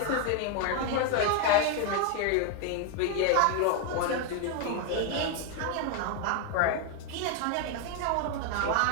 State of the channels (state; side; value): different; both; correlation 0.01